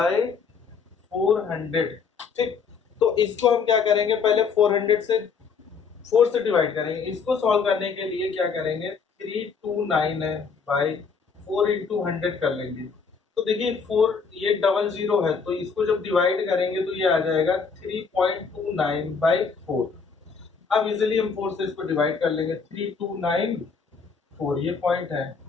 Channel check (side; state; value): right; quieter; 5.5 dB